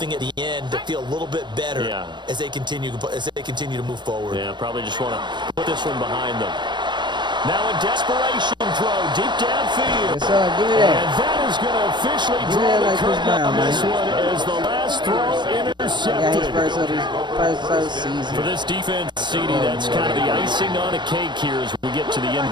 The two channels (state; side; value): late; left; 0.22 ms